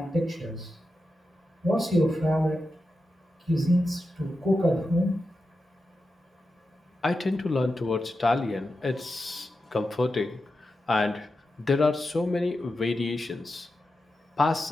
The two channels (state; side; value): normal; both; correlation 0.90